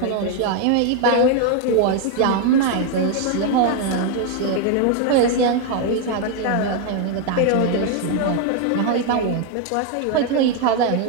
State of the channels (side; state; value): both; different; correlation 0.01